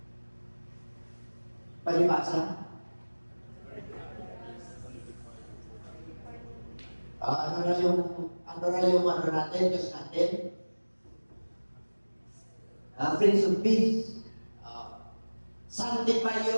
Palibasa. Ano na yung natin, Diyos natin? Prince of Peace. Sanctify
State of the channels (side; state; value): both; inverted; correlation -1.00